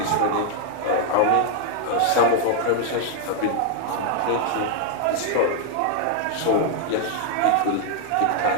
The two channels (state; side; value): different; both; correlation 0.00